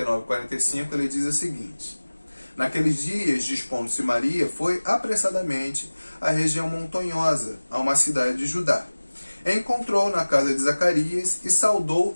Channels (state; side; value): inverted; both; correlation -1.00